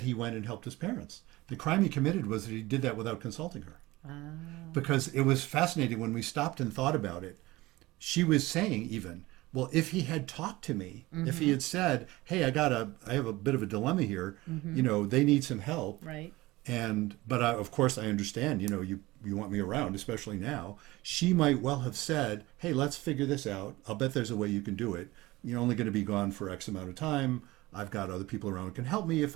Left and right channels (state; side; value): quieter; left; 19.7 dB